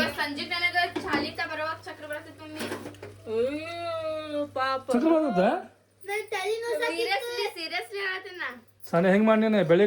ಸಂಜೆ ನನಗೆ ಚಾಲಿತ ಬರುವಾಗ ಚಕ್ರ ಬರ್ತೈತೆ ಮಮ್ಮಿ. ಅಯ್ಯೋ ಪಾಪ. ಚಕ್ರ ಬರ್ತದ? ಸೀರಿಯಸ್ಲಿ ಹೇಳ್ತೀನಿ. ಸಾನೆ ಹೆಂಗೆ ಮಾಡಿ ನೀನು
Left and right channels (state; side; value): identical; both; correlation 1.00